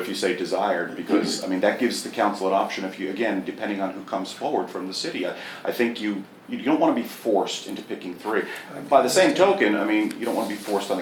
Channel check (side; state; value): both; identical; correlation 1.00